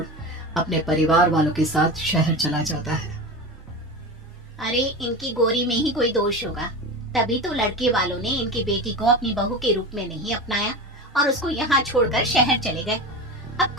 अपने परिवार वालों के साथ शहर चला जाता है। अरे इनकी गोरी में ही कोई दोष होगा, तभी तो लड़के वालों ने इनकी बेटी को अपनी बहू के रूप में नहीं अपनाया और उसको यहाँ छोड़कर शहर चले गए। अब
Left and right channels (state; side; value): normal; both; correlation 0.26